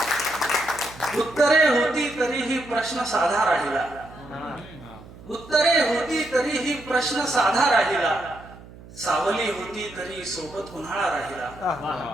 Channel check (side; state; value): right; noise; hum, 19 dB below the sound